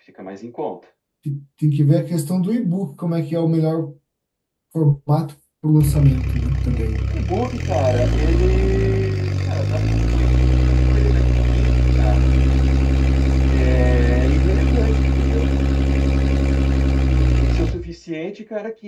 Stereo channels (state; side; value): identical; both; correlation 1.00